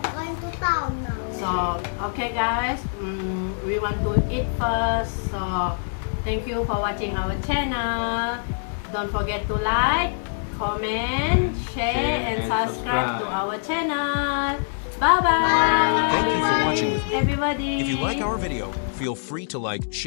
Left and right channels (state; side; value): silent; right; 62 dB below the other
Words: Going to town now. So, okay guys, we want to eat first. So, thank you for watching our channel. Don't forget to like, comment, share, and subscribe to our channel. Bye-bye. Thank you for watching with me. Everybody. If you like our video, feel free to like,